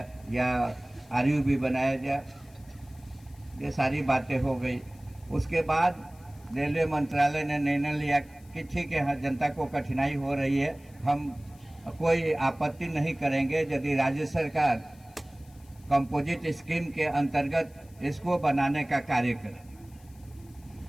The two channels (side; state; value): left; noise; hiss, 28 dB below the sound